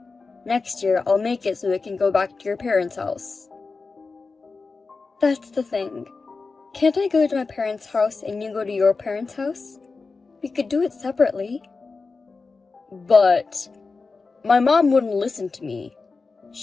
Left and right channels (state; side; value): quieter; right; 4.2 dB